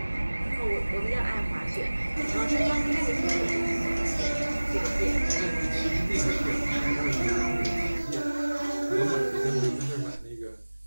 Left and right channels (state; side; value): inverted; both; correlation -1.00